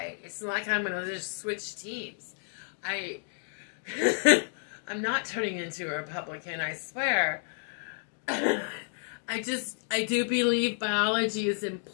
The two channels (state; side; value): silent; right; 57 dB below the other